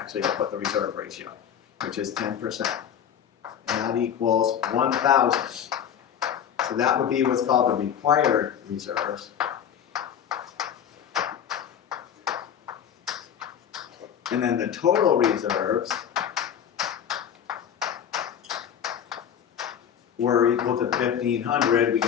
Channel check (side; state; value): right; quieter; 8.9 dB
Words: I'll put the reserve ratio, which is 10%. And that equals 1,000. So that would be what's called the required reserves. And then the total reserves were equal to 1,500. We